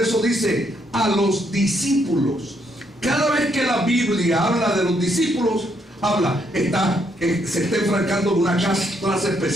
dice a los discípulos. Cada vez que la Biblia habla de los discípulos, se está enfrascando en una clase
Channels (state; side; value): normal; both; correlation 0.74